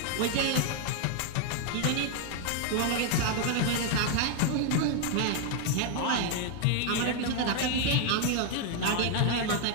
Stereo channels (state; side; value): different; both; correlation 0.00